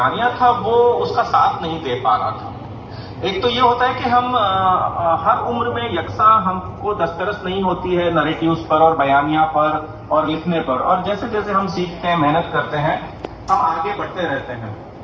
تھا وہ اس کا ساتھ نہیں دے پا رہا تھا۔ ایک تو یہ ہوتا ہے کہ ہم ہر عمر میں یکساں ہم کو دسترس نہیں ہوتی ہے نریٹیوز پر اور بیانیہ پر اور لکھنے پر، اور جیسے جیسے ہم سیکھتے ہیں، محنت کرتے ہیں، ہم آگے بڑھتے رہتے ہیں۔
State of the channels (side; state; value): both; identical; correlation 1.00